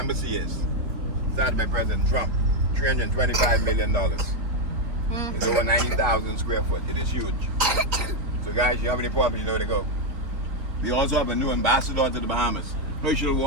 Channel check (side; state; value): left; late; 3.7 ms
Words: is. Started by President Trump. $325 million. It's over 90,000 square foot. It is huge. So guys, you have any problems, you know where to go. We also have a new ambassador to the Bahamas. Herschel